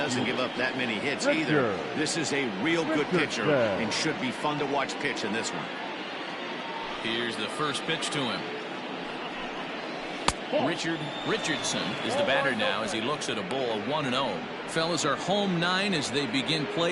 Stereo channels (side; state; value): both; identical; correlation 1.00